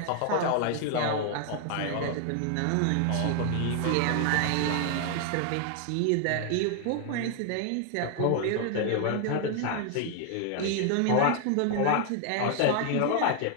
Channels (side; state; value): both; different; correlation 0.00